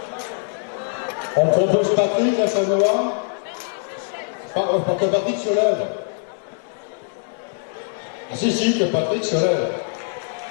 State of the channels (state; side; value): silent; right; 61 dB below the other